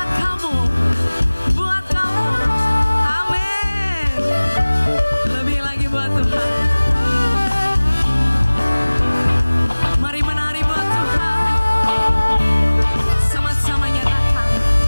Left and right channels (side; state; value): both; inverted; correlation -1.00